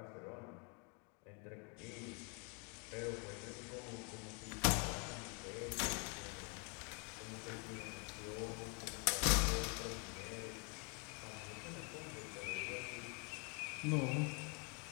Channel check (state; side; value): quieter; right; 35.5 dB